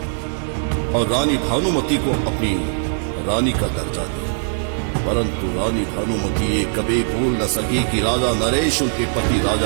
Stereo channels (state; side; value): silent; left; digital silence